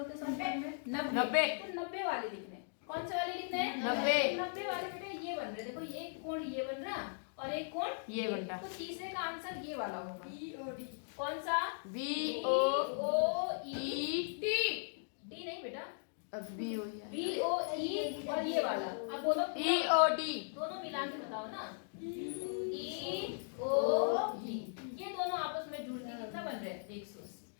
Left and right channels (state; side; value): silent; right; digital silence